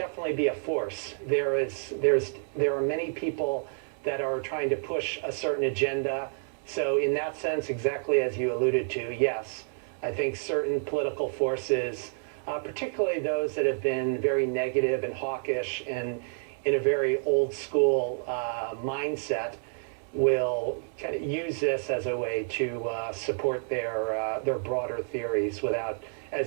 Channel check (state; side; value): silent; left; digital silence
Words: be a force. There are many people that are trying to push a certain agenda. So in that sense, exactly as you alluded to, yes, I think certain political forces, particularly those that have been very negative and hawkish and in a very old school mindset, will kind of use this as a way to support their broader theories without,